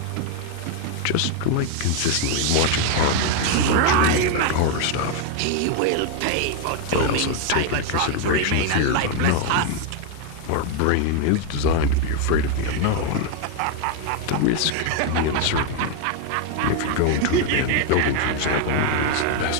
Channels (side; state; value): both; different; correlation 0.01